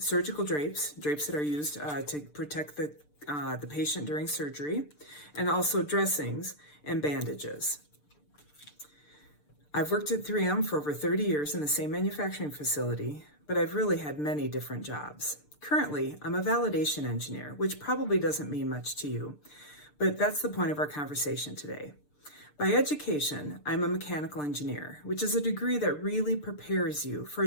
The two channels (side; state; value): right; late; 6.7 ms